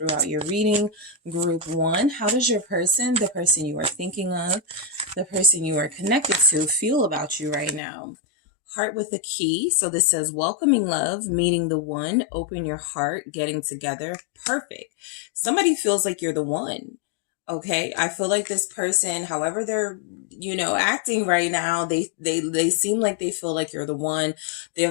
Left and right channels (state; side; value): drops out; right; at 7.8 s